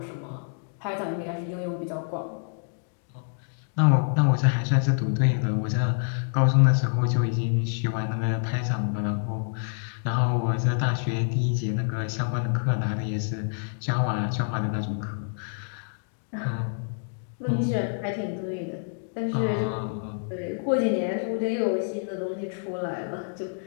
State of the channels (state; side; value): silent; right; digital silence